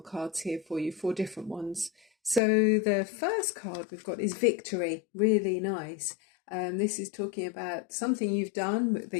cards here for you, four different ones. So the first card we've got is victory, really nice. This is talking about something you've done that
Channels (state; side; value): drops out; right; at 2.4 s